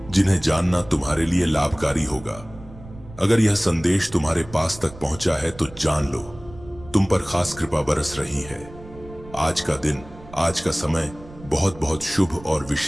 जिन्हें जानना तुम्हारे लिए लाभकारी होगा। अगर यह संदेश तुम्हारे पास तक पहुंचा है तो जान लो, तुम पर खास कृपा बरस रही है। आज का दिन, आज का समय बहुत बहुत शुभ और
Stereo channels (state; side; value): noise; right; rumble, 18 dB below the sound